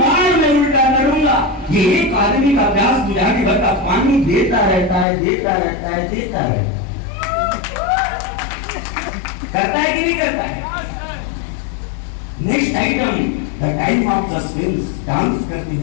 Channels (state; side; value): drops out; right; at 5.1 s